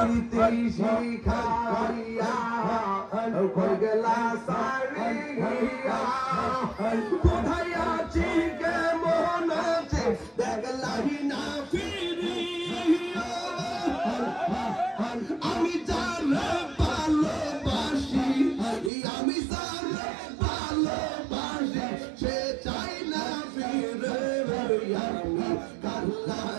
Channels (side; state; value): left; drops out; at 18.9 s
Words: শিখাইয়া কই গেলা সারিয়া কোথায় আছি কেমন আছে দেখলাহি না ফিরিয়া আমি যারে ভালোবাসি আমি যারে ভালোবাসি সে চাই না ফিরে আমি কার